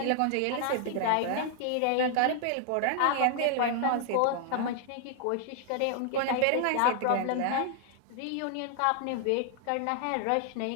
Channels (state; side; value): different; both; correlation 0.00